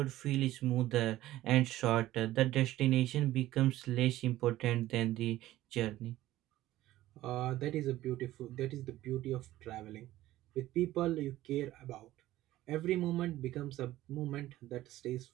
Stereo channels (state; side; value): quieter; left; 15.3 dB